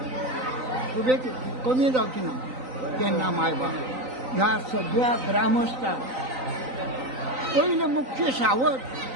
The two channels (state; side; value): late; left; 3.9 ms